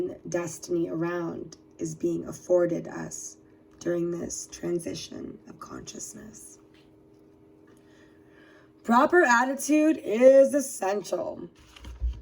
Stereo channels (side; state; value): both; identical; correlation 1.00